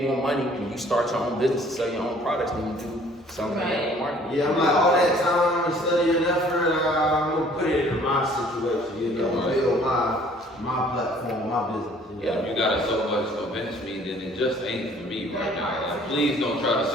more money when you start your own business and sell your own products than you do selling your own market. Yeah, I'm like, all that time and study and effort, I'm gonna put it in my situation, you know, build my platform, my business. Yeah, you gotta so much convince me that it just ain't for me right now. Like, please don't try to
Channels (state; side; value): normal; both; correlation 0.56